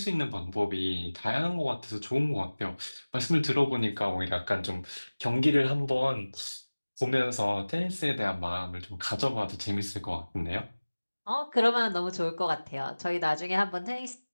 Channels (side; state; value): both; inverted; correlation -1.00